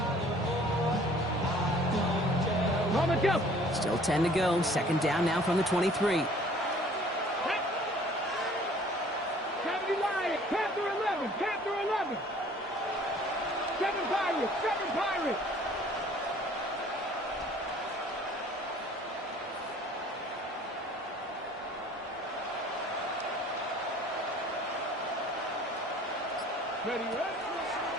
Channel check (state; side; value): normal; both; correlation 0.53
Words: Still 10 to go. Second down now from the 23. Panther 11. 7 Pirates. Ready.